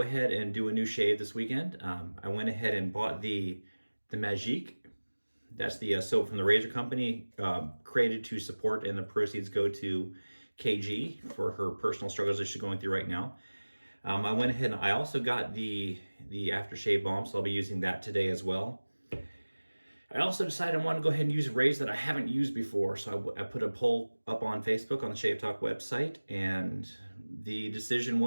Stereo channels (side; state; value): both; inverted; correlation -1.00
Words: ahead and do a new shave this weekend. I went ahead and bought the Magique. That's the soap from the razor company, created to support, and the proceeds go to KG for her personal struggles that she's going through right now. I went ahead and I also got the aftershave balm, so I'll be using that today as well. I also decided I want to go ahead and use a razor that I haven't used before. So I put a poll up on Facebook on the Shave Talk website, and the decision